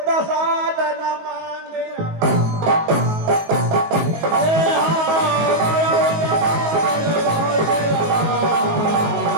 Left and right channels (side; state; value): left; late; 18 ms